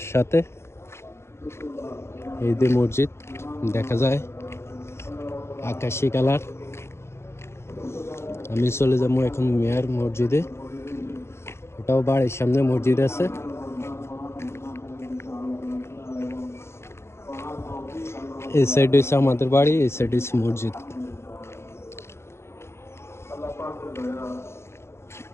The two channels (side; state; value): right; late; 0.13 ms